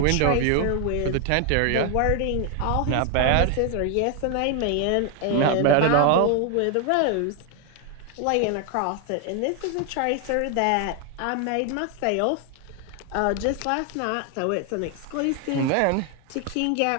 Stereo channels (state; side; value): different; both; correlation 0.01